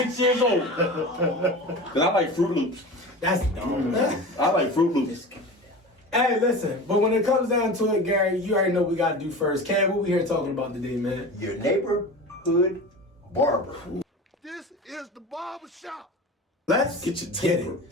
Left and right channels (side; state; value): both; normal; correlation 0.32